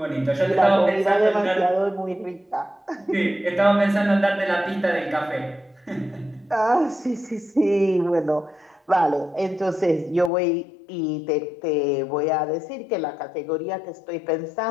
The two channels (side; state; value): right; drops out; at 10.3 s